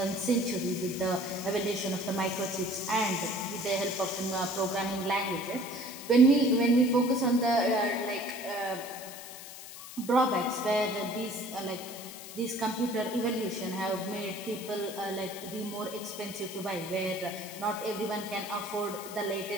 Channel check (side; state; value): left; noise; hiss, 13 dB below the sound